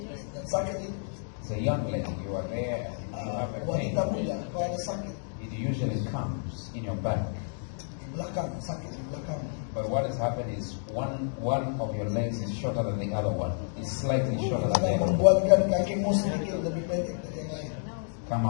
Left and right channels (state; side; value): silent; right; digital silence